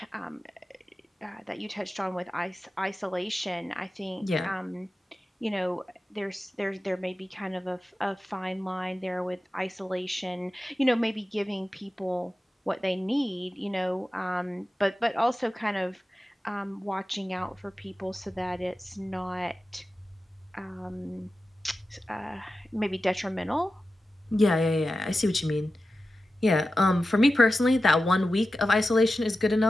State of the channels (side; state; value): both; normal; correlation 0.93